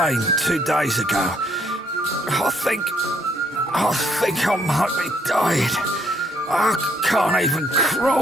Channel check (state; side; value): normal; both; correlation 0.69